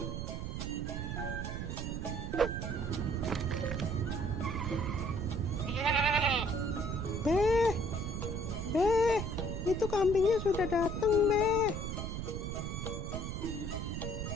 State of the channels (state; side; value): noise; right; rumble, 4 dB below the sound